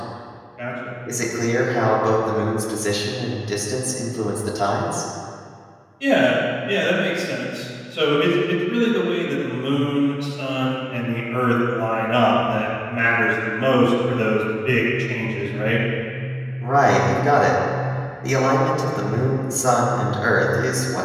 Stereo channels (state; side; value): identical; both; correlation 1.00